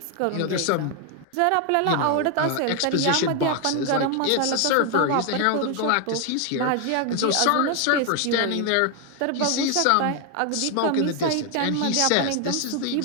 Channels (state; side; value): different; both; correlation 0.01